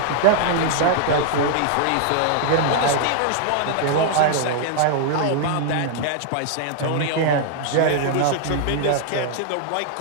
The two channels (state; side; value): different; both; correlation -0.01